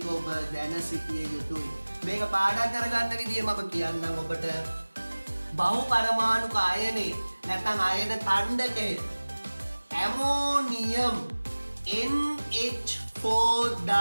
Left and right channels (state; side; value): inverted; both; correlation -1.00